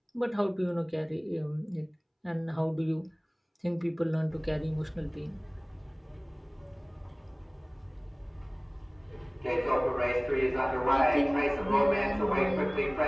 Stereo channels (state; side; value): identical; both; correlation 1.00